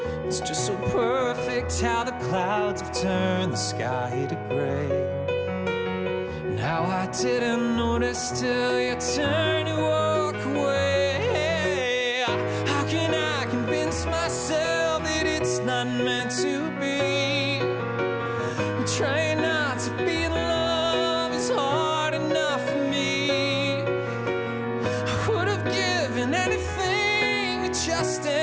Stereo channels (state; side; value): identical; both; correlation 1.00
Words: It's just so perfect how the clouds have turned the sky to gray. And how I didn't notice till you turned to walk away. How can I convince myself that it's not meant to be? I'm trying not to be in love, it's hard enough for me. I would have given anything to just